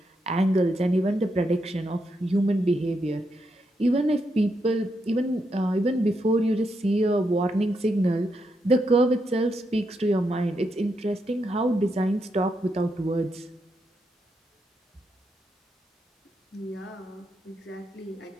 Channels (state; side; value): normal; both; correlation 0.82